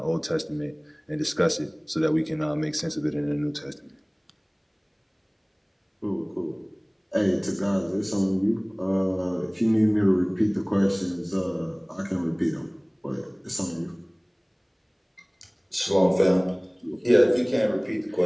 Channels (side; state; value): both; identical; correlation 1.00